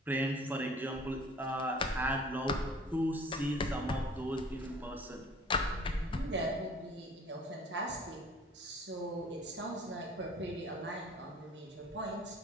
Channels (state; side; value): normal; both; correlation 0.50